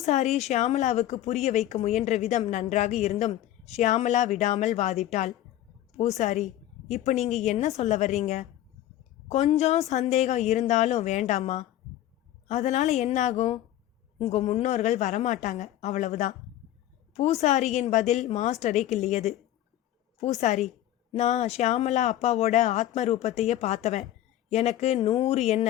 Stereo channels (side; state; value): right; quieter; 13.2 dB